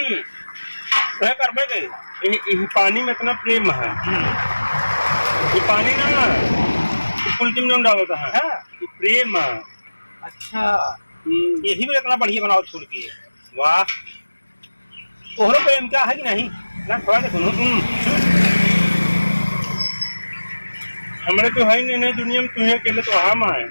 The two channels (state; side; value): inverted; both; correlation -1.00